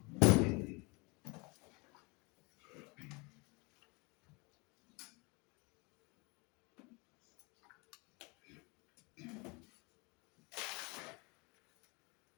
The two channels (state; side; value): quieter; right; 28.3 dB